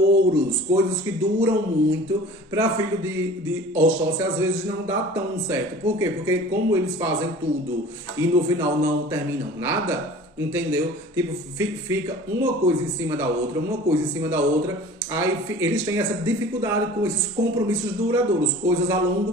coisas que duram muito. Para filho de Oxóssi, às vezes não dá tão certo. Por quê? Porque como eles fazem tudo e no final não terminam nada, entendeu? Tipo, fica uma coisa em cima da outra, aí eles têm essa dificuldade com esses compromissos duradouros, coisas a longo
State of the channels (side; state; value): both; normal; correlation 0.43